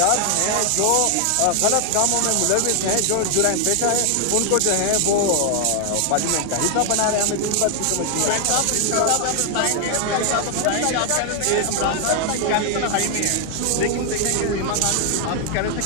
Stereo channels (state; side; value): different; both; correlation 0.00